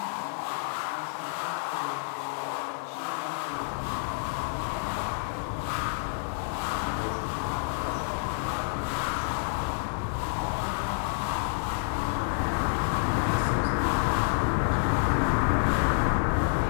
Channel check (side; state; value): right; silent; digital silence